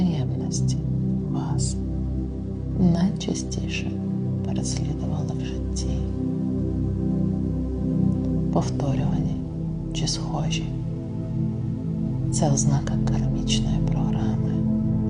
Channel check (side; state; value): both; identical; correlation 1.00